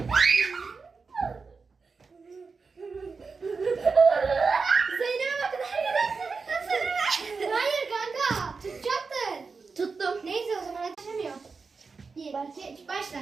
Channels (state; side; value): quieter; left; 4.7 dB